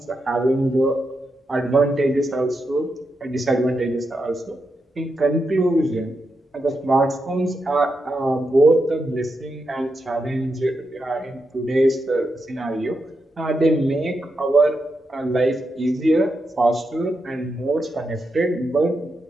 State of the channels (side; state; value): both; normal; correlation 0.85